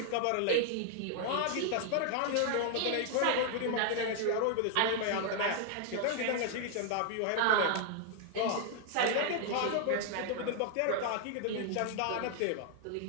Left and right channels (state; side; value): different; both; correlation 0.00